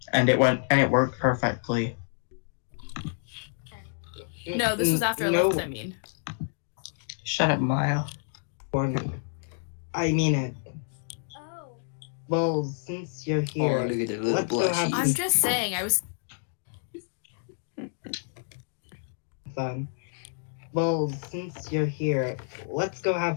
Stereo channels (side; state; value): right; silent; digital silence